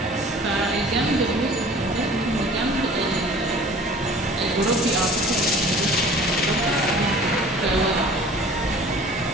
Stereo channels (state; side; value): normal; both; correlation 0.47